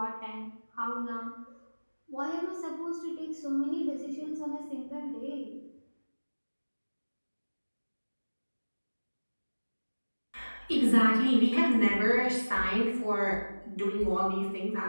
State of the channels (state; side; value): inverted; both; correlation -1.00